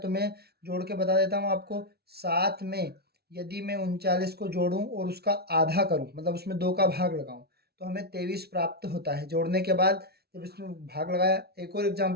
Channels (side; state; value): left; late; 0.46 ms